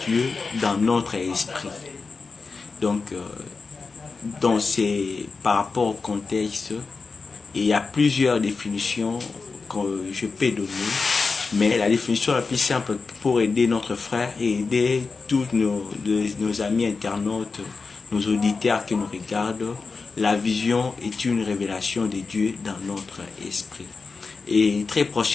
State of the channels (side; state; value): right; quieter; 4.4 dB